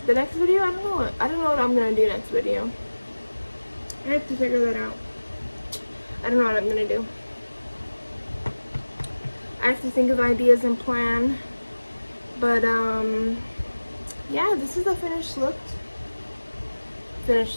next video, I don't know what I'm going to do next video. I have to figure that out. I don't know what I'm going to do. I have to think of ideas and plan. But, yeah, this is the finished look.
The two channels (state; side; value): inverted; both; correlation -1.00